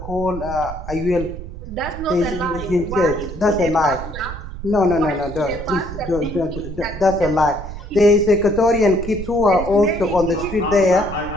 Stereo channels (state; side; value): noise; right; rumble, 10 dB below the sound